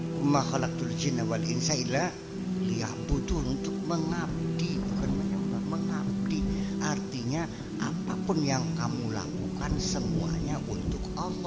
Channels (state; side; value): identical; both; correlation 1.00